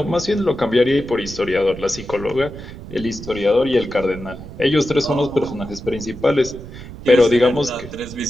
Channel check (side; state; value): right; noise; rumble, 13 dB below the sound